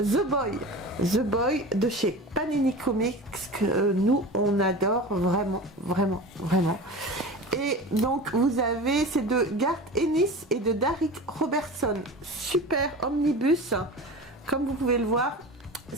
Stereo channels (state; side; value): normal; both; correlation 0.32